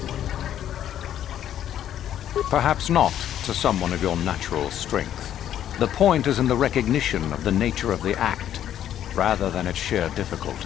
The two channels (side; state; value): right; quieter; 10.8 dB